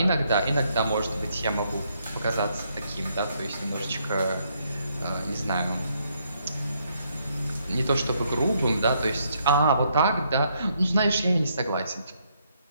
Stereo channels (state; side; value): inverted; both; correlation -0.73